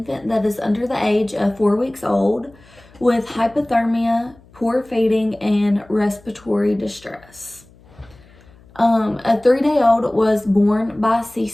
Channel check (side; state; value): left; noise; hum, 26 dB below the sound